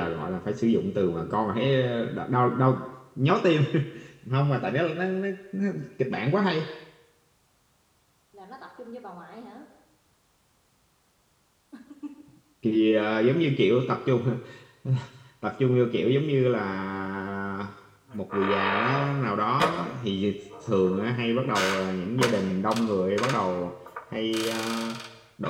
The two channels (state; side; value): identical; both; correlation 1.00